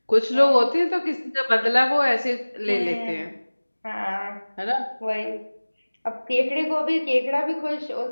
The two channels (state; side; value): inverted; both; correlation -1.00